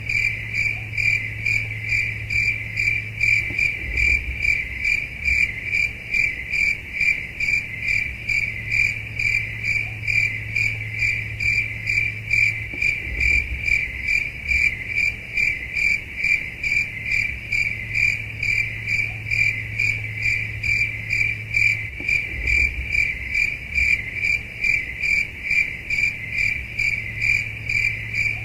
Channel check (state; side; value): identical; both; correlation 1.00